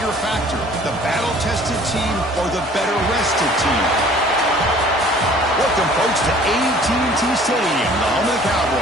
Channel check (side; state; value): both; normal; correlation 0.52